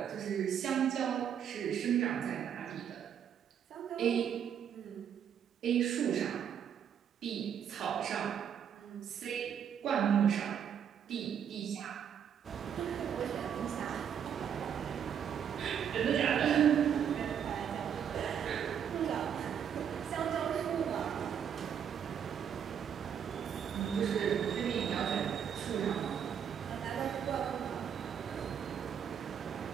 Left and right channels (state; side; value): quieter; left; 8.4 dB